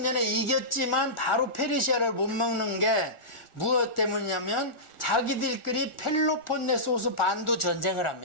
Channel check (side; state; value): right; late; 1.4 ms